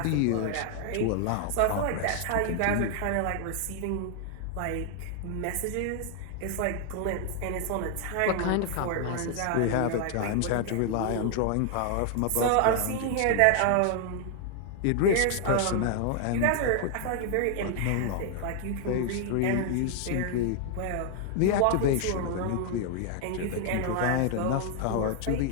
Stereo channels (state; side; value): different; both; correlation 0.00